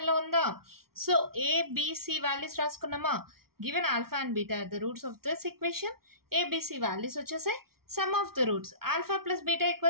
ఉందా? So abc values రాసుకున్నామా? Given alpha and beta are the roots of this equation. abc values వచ్చేసాయి. Sum of the roots alpha plus beta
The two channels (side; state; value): left; late; 0.94 ms